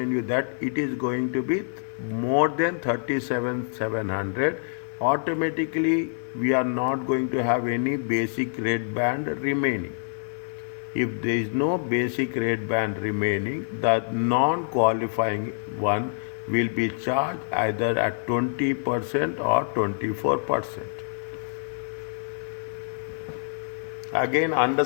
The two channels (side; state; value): right; silent; digital silence